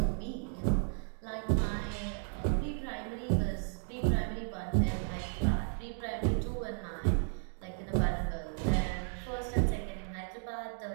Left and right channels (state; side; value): silent; left; 55 dB below the other